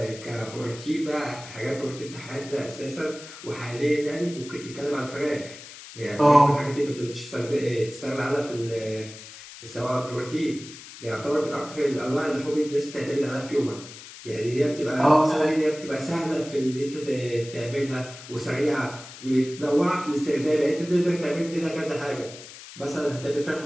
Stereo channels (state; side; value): noise; left; hiss, 15 dB below the sound